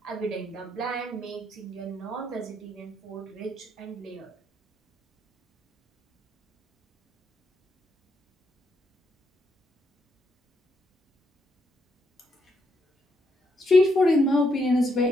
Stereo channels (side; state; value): both; normal; correlation 0.77